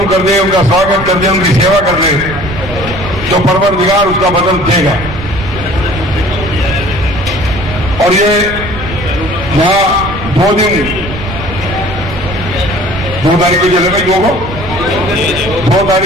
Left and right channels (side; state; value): right; noise; rumble, 10 dB below the sound